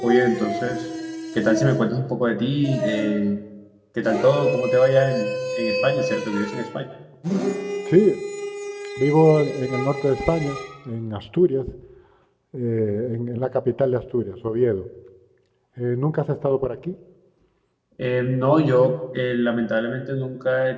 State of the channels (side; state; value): both; identical; correlation 1.00